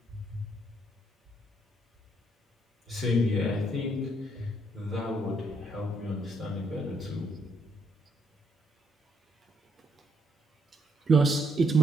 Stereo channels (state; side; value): normal; both; correlation 0.72